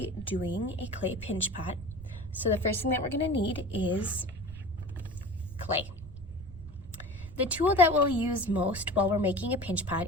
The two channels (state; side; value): noise; right; rumble, 14 dB below the sound